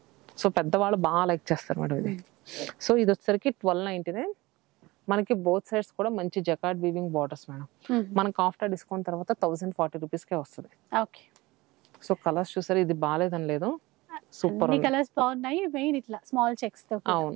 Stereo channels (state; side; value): quieter; left; 21.0 dB